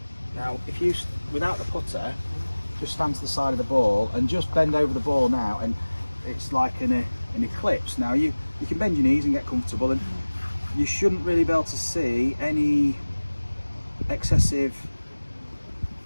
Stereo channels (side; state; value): both; inverted; correlation -1.00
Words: Now, if you, without the putter, just stand to the side of the ball and just bend over the ball now, and it's like an eclipse. Now, you can bend your knees and get comfortable, and you shouldn't really be able to see any excessive